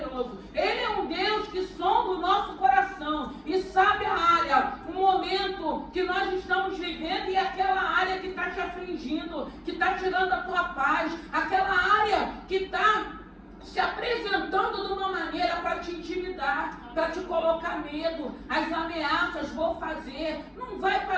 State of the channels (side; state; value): both; identical; correlation 1.00